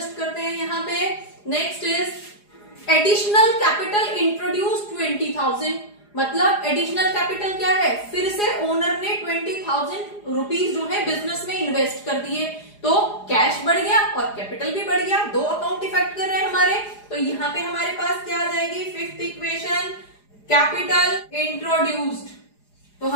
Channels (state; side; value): late; right; 4.9 ms